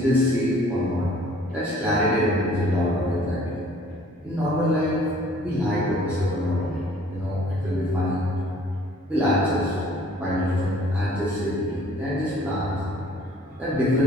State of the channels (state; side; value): normal; both; correlation 0.56